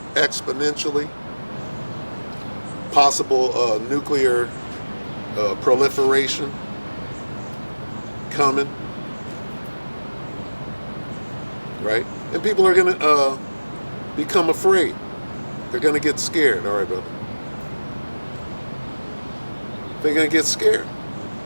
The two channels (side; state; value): both; inverted; correlation -1.00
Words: exponentially. Possible nuclear proliferation coming. Right? And people are going to become afraid. They're going to get scared. All right, brother. They're going to get scared.